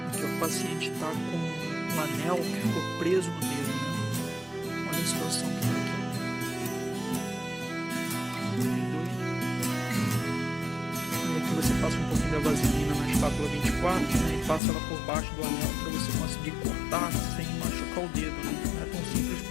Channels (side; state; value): right; drops out; at 14.6 s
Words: que o paciente está com um anel que ficou preso no dedo, né? Olha a situação que está aqui. Aí aqui você passa um pouquinho da vaselina na espátula 24, né? E passa ela por baixo do anel para você conseguir cortar sem machucar o dedo, né? Não é tão simples